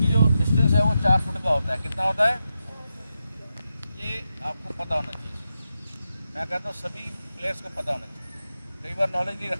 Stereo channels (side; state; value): both; inverted; correlation -0.88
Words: जो डिस्टेंस है वो 4 फुट का होता है। कितना होता है ये आपको पता होना चाहिए। मैं कहता हूँ सभी प्लेयर्स को पता होना चाहिए, कई बार नॉलेज नहीं